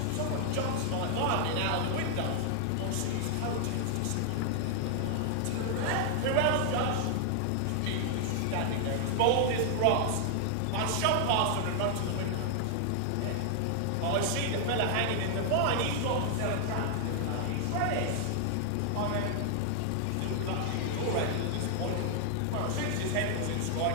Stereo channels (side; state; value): both; different; correlation 0.00